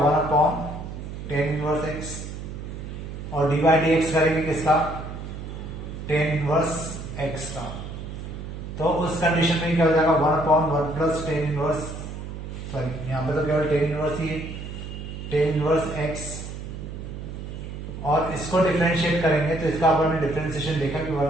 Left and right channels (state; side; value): noise; right; hum, 9 dB below the sound